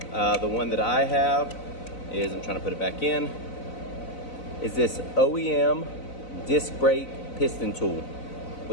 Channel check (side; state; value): right; late; 4.0 ms